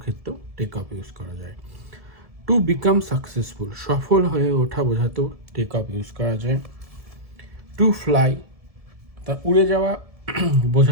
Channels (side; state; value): left; late; 1.8 ms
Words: ক্ষেত্রেও টেক অফ ইউজ করা যায়। টু বিকাম সাকসেসফুল, সফল হয়ে ওঠা বোঝাতেও টেক অফ ইউজ করা যায়। টু ফ্লাই, তা উড়ে যাওয়া